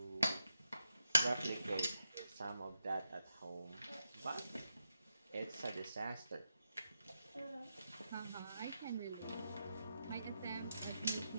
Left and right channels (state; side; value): inverted; both; correlation -0.85